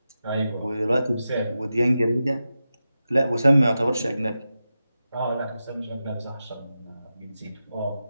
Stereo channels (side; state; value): both; inverted; correlation -0.91